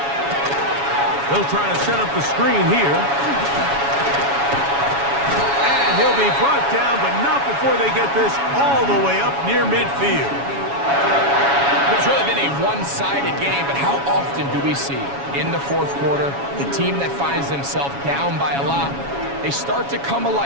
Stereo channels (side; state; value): left; late; 7.2 ms